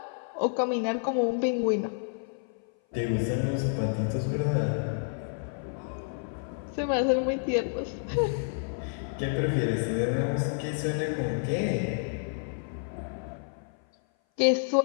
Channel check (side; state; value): right; silent; 56 dB below the other